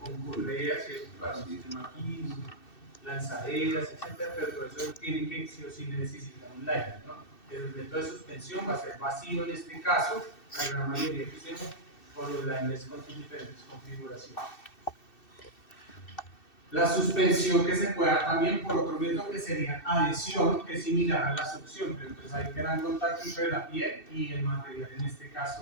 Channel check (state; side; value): late; right; 2.6 ms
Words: correas, para un sistema aquí, lanzaderas, etc. Pero todo eso tiene que sí o sí necesitar un liner, ¿no? Pero el método de suspensión va a ser vacío en este caso, la gran mayoría que usemos, por los liners con sus diferentes configuraciones. La suspensión que se puede dar también por otro método que sería adhesión, que es similar a la succión, pero entonces hay gran contacto entre la piel y el material, en este